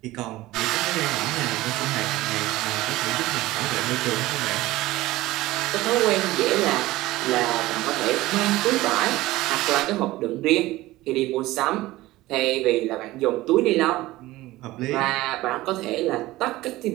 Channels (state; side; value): quieter; left; 17.9 dB